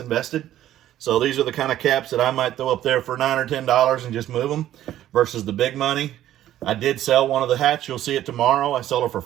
So these are the kind of caps that I might throw up there for $9 or $10 and just move them versus the big money. I did sell one of the hats. You'll see it tomorrow. I sold it for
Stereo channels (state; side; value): quieter; left; 12.6 dB